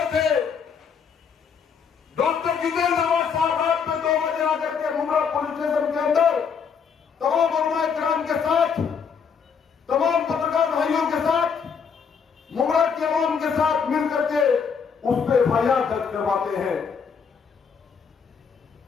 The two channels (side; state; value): right; quieter; 6.4 dB